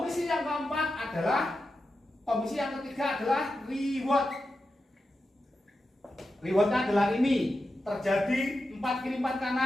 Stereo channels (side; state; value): both; normal; correlation 0.90